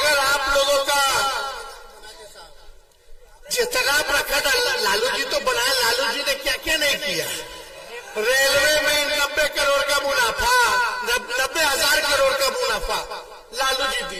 आप लोगों का जितना प्रखंड, लालू जी तो बनाए, लालू जी ने क्या क्या नहीं किया। रेलवे में 90 करोड़ का मुनाफा, 90,000 करोड़ का मुनाफा लालू जी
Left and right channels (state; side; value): identical; both; correlation 1.00